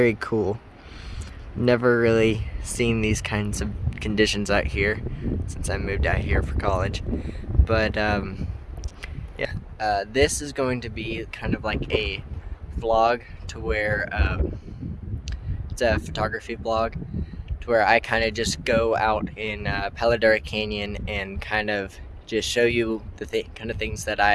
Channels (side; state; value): both; identical; correlation 1.00